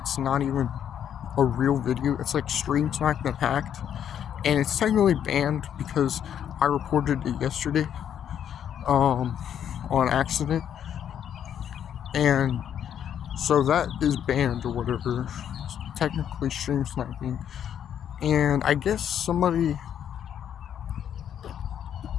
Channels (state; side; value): quieter; right; 9.3 dB